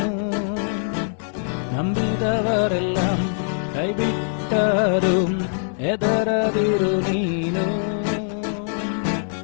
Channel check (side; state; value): right; silent; digital silence